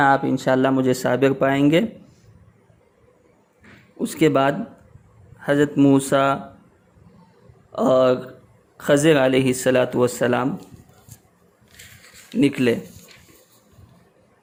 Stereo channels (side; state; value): both; identical; correlation 1.00